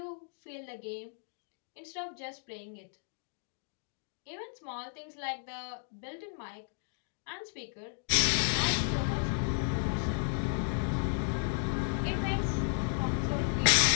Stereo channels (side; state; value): right; silent; 55 dB below the other